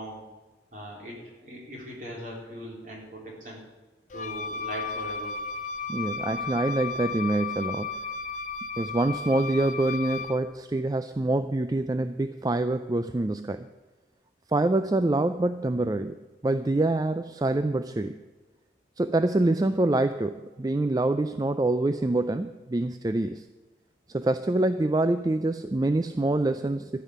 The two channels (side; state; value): both; normal; correlation 0.74